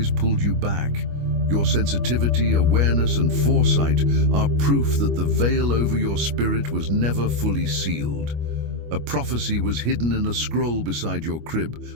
pulled you back. Your sensitivity, awareness, and foresight are proof that the veil over your spirit was never fully sealed. A prophecy was hidden in a scroll beside your crib,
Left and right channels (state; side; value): late; left; 25 ms